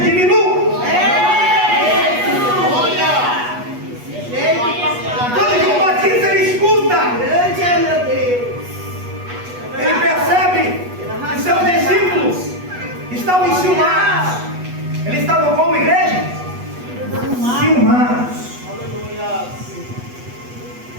Quando João Batista ele escuta, ele percebe que seus discípulos estavam enciumados. Eles estavam como igreja? Enciumados.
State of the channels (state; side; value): late; left; 8.2 ms